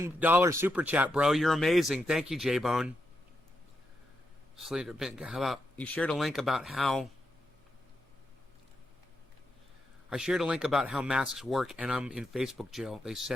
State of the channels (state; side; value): normal; both; correlation 0.84